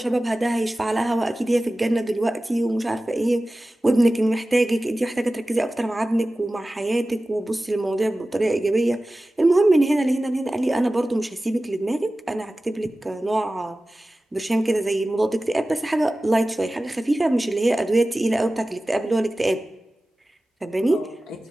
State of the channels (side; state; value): both; normal; correlation 0.96